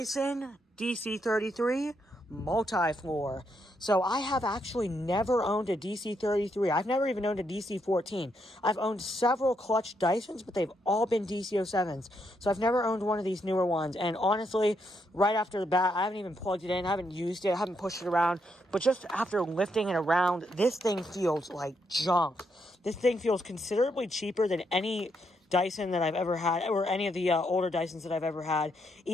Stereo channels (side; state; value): both; normal; correlation 0.78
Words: DC33 MultiFloor. So I have actually never owned a DC33. I've never even owned a DC14. I've owned several clutch Dysons, but they've all been DC07s. So I've never owned one of these newer ones. And honestly, right after the bat, I haven't even plugged it in, I haven't used it, I haven't pushed it around. But just after lifting it around, this thing feels like junk. This thing feels considerably cheaper than any Dyson that I've ever had, or any of the older Dysons that I've ever had.